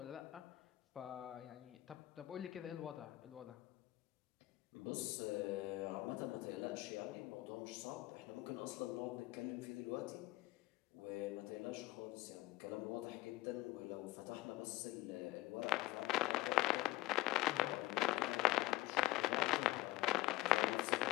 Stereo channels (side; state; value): right; quieter; 18.0 dB